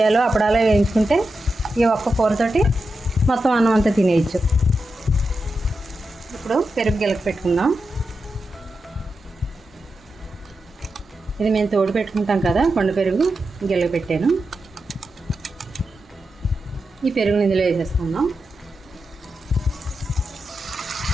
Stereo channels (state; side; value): normal; both; correlation 0.89